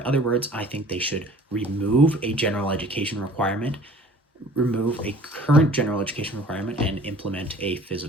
other words, I think they should remove a general education requirement, remove a current general education requirement, and implement a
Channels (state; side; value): normal; both; correlation 0.49